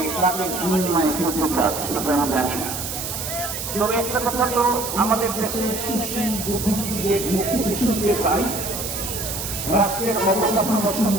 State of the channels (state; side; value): noise; right; hiss, 5 dB below the sound